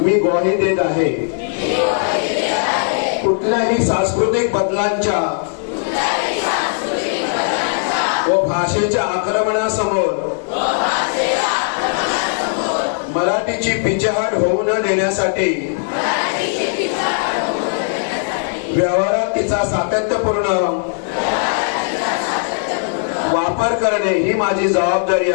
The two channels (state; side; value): silent; right; digital silence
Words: मी ग्वाही देत आहे. कुठल्याही सांस्कृतिक बदलांच्या व भाषेच्या आक्रमणासमोर मराठीची पिछेहाट होऊ न देण्यासाठी व्यवहारात तिचा सातत्यपूर्ण वापर करणे ही माझी जबाबदारी